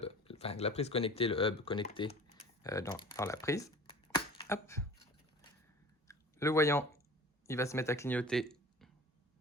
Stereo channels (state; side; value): normal; both; correlation 0.42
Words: enfin la prise connectée, le hub connecté dans la prise. Hop. Le voyant, il va se mettre à clignoter